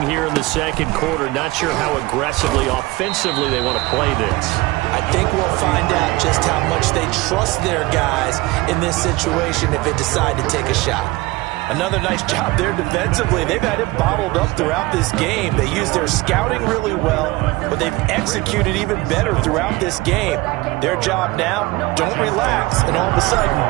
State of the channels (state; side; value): quieter; left; 21.2 dB